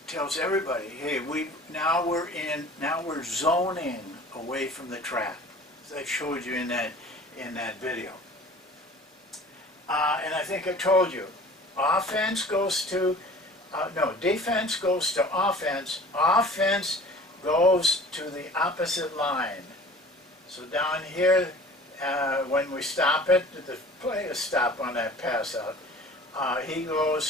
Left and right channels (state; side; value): normal; both; correlation 0.45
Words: tells everybody, hey, now we're zoning away from the trap, as I showed you in that video. And I think I told you, defense goes to offense. Offense goes to the opposite line. So down here, when we stop it, the play is stop on that pass out. He